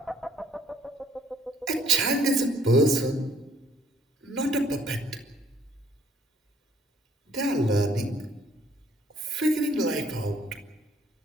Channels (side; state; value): both; normal; correlation 0.63